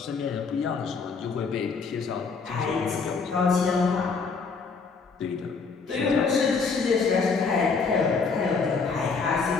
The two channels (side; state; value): right; quieter; 4.9 dB